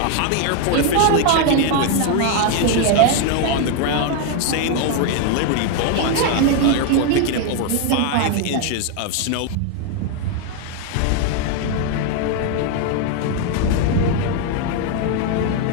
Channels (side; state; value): both; different; correlation 0.01